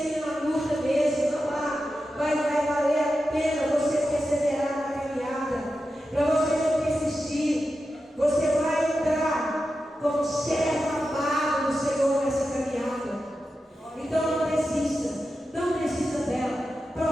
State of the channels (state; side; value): normal; both; correlation 0.90